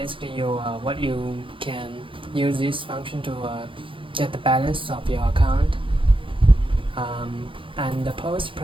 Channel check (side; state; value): left; late; 0.25 ms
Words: what you can use this function to get the balance of your account. And the post